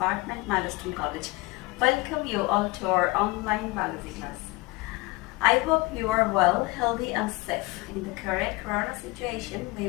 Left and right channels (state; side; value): quieter; right; 22.6 dB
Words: Milestone College. Welcome you all to our online biology class. I hope you are well, healthy and safe. In the current corona situation,